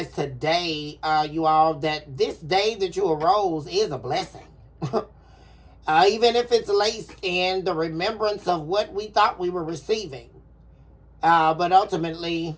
today, you all, that this day that you arose is a blessing. Even if it's laced in the remembrance of what we thought we were receiving, but ultimately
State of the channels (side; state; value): both; identical; correlation 1.00